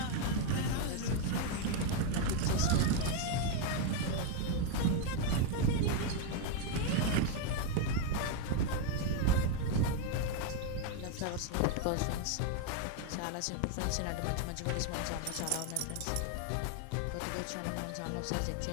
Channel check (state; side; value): different; both; correlation 0.01